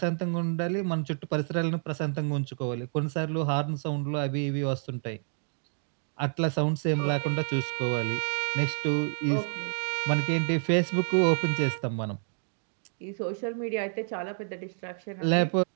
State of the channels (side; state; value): left; silent; 58 dB below the other